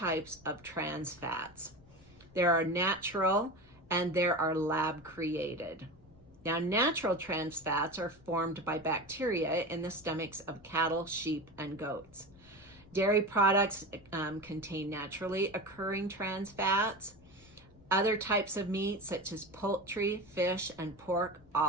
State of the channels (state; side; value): noise; left; rumble, 27 dB below the sound